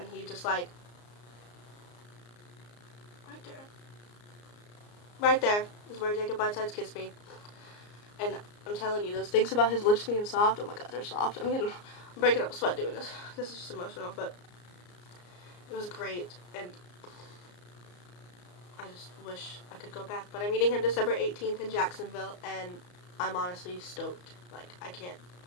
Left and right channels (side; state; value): right; late; 34 ms